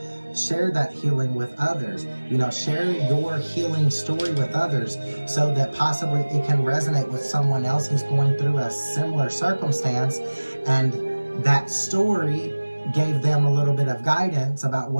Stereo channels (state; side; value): inverted; both; correlation -1.00